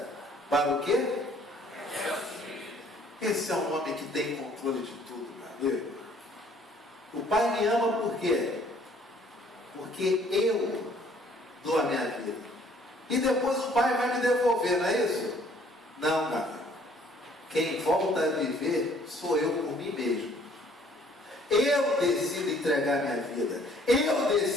Para o quê? Esse é um homem que tem controle de tudo, meu amigo. O Pai me ama por quê? Porque eu dou a minha vida. E depois o Pai vai me devolver, não é isso? Não, meu amigo. Quem volta a viver sou eu por mim mesmo. Eu decido entregar minha vida. Eu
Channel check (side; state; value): both; normal; correlation 0.59